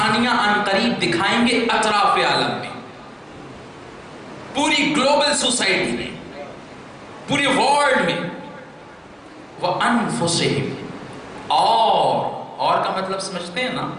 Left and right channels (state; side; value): identical; both; correlation 1.00